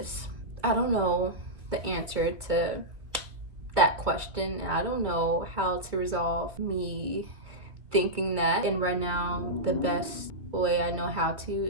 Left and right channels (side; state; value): left; late; 2.0 ms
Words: I don't know the answer to that question, and I don't know how to resolve me thinking that. And right now, the best way I know how